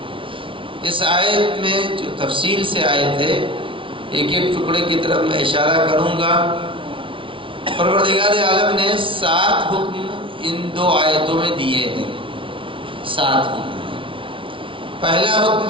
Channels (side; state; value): left; late; 0.25 ms